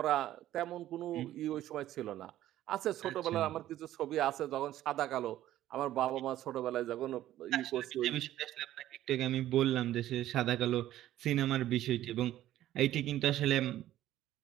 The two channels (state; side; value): quieter; left; 13.4 dB